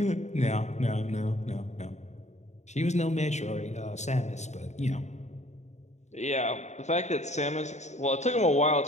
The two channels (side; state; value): right; late; 0.33 ms